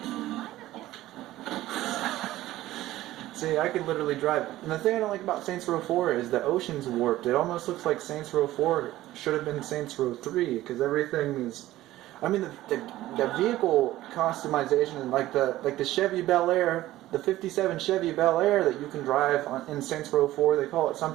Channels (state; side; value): quieter; left; 15.6 dB